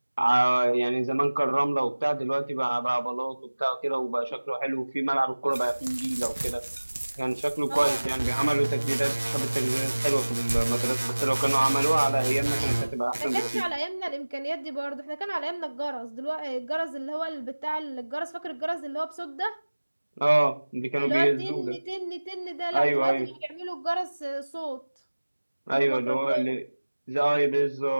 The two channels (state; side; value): inverted; both; correlation -1.00